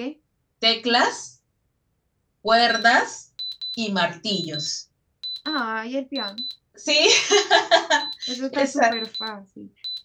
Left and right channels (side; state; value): both; identical; correlation 1.00